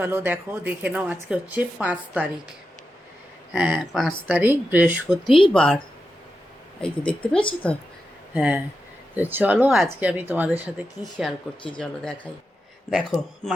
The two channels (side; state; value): both; normal; correlation 0.89